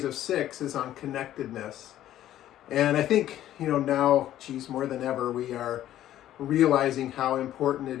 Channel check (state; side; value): quieter; right; 12.6 dB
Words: of 6 is on connectedness. And I think, now, more than ever, we are realizing how important